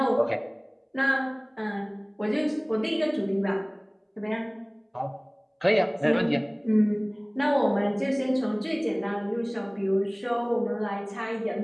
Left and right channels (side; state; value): both; identical; correlation 1.00